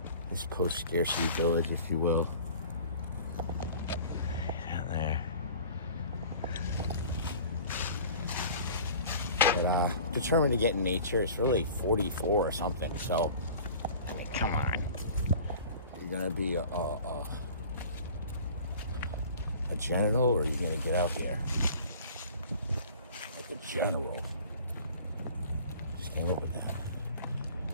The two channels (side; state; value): both; inverted; correlation -0.44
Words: this post-scarcity village, if you will. Down there. But determined to get in nature. It's really 44 or something, so I mean, come on. You're gonna be a general, or you're gonna get out here like a general. Just can't live with that.